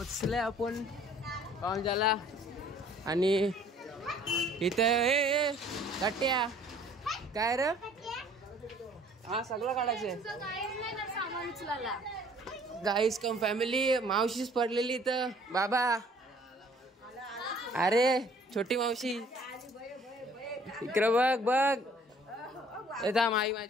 आपण पाहुणचाला आणि इथे गट्ट्या काय रे. हा सगळं काढायचंय. गाईस कम फॅमिली. मावशीच पडलेली इथं बाबा. अरे छोटी मावशी इकडं बघ बघ. येता आई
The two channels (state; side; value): normal; both; correlation 0.56